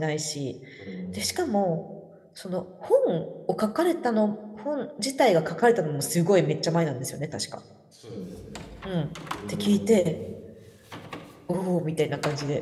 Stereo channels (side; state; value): both; identical; correlation 1.00